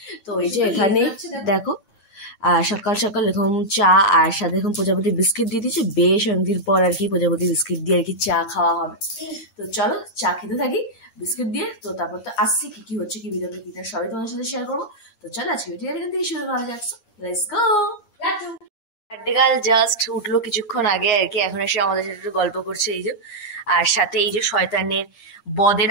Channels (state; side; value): late; right; 8.7 ms